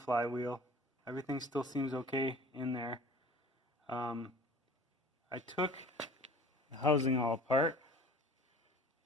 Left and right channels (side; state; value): both; normal; correlation 0.44